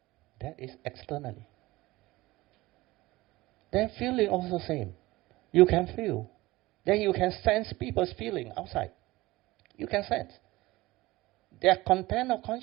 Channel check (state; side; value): quieter; left; 19.4 dB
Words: That is externally. Then feeling also same. You can feel. Then you can sense people's feeling outside. You can sense. Their content of